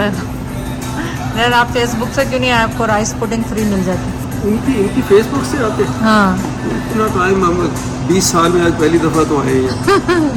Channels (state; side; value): identical; both; correlation 1.00